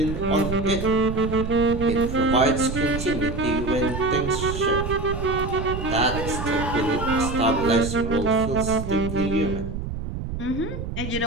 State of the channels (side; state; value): right; noise; rumble, 6 dB below the sound